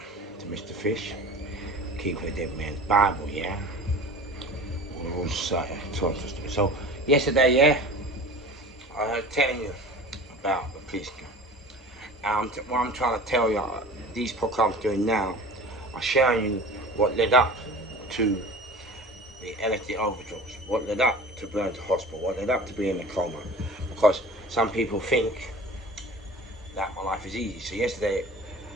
to Mr. Fish, keeping a dead man's Bible, yeah? All society. So, yesterday, yeah, I was telling you about the police gun. What I'm trying to tell you, these podcasts I'm doing now, are showing you what led up to the LSD overdose, what led up to going to hospital, what led up to being in a coma. Because some people think that my life is easy. So yesterday,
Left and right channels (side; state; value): both; normal; correlation 0.39